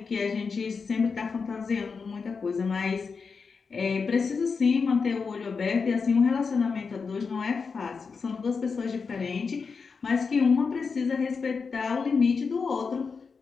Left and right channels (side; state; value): right; quieter; 5.1 dB